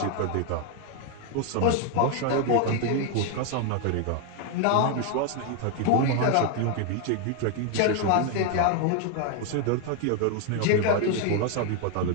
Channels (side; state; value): both; different; correlation 0.00